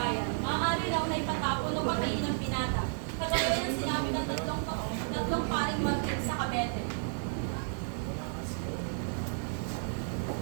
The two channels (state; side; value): silent; left; digital silence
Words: Maaari raw na ipatapon o patayin ng binata, kagaya ng sinabi ng tatlong paring martir sa Cavite.